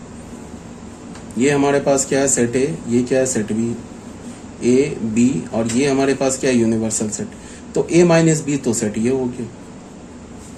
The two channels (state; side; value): identical; both; correlation 1.00